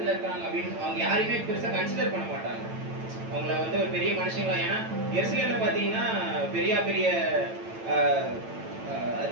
இருக்கிறாங்க அப்படின்னு அவங்க யாரையுமே பெருசா கன்சிடர் பண்ண மாட்டாங்க. அவங்கள வந்து ஒரு பெரிய மனுஷங்களா, ஏன்னா எருசலேம்ல பாத்தீங்கன்னா பெரிய பெரிய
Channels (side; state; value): left; late; 9.0 ms